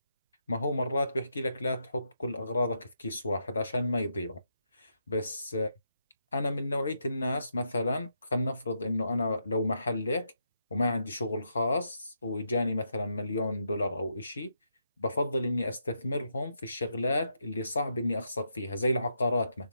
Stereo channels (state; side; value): inverted; both; correlation -0.81